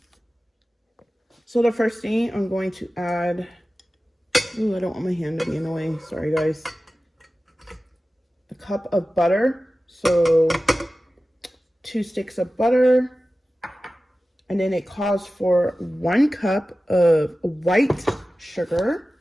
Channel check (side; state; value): both; normal; correlation 0.95